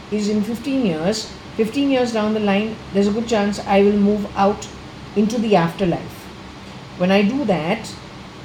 is in 15 years down the line, there's a good chance I will move out into the afterlife. When I do that,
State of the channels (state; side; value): identical; both; correlation 1.00